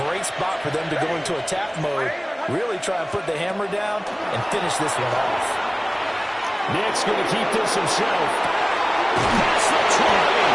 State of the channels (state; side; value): identical; both; correlation 1.00